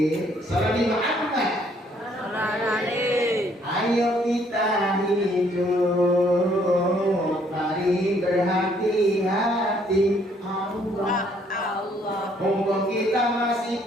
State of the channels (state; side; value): normal; both; correlation 0.65